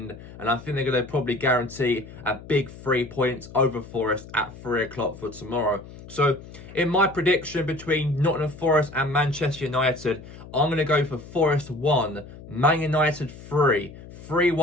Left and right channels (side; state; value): left; noise; hum, 16 dB below the sound